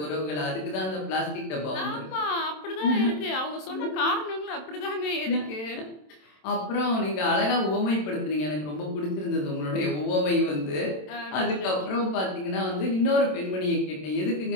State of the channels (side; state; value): right; late; 27 ms